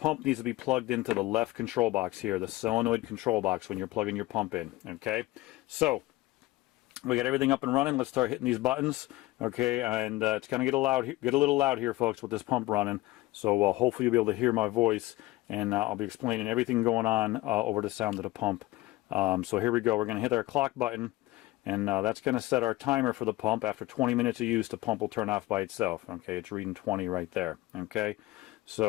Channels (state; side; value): quieter; right; 18.6 dB